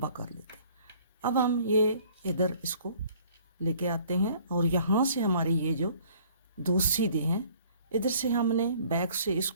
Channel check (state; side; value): inverted; both; correlation -0.56